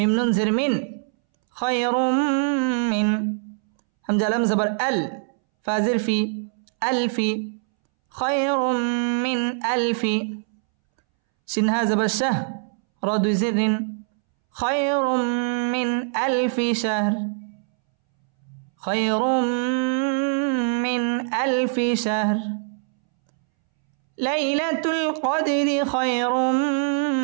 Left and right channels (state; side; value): silent; left; 63 dB below the other